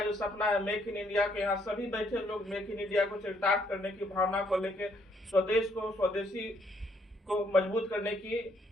जो सपना है मेक इन इंडिया के, यहाँ सभी बैठे लोग मेक इन इंडिया को चरितार्थ करने की भावना को लेकर स्वदेश को, स्वदेशी को मजबूत करने की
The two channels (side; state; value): both; normal; correlation 0.70